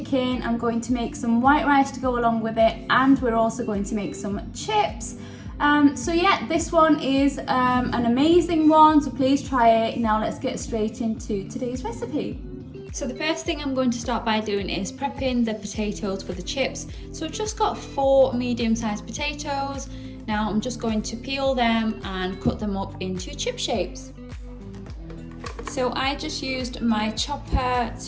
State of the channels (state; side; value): identical; both; correlation 1.00